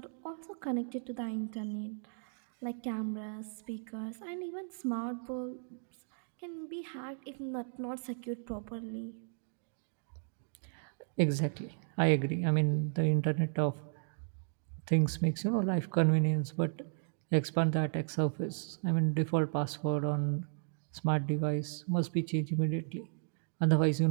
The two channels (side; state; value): left; silent; digital silence